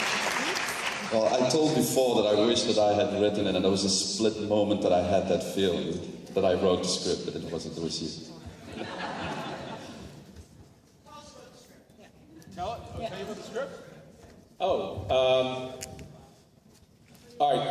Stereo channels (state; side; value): identical; both; correlation 1.00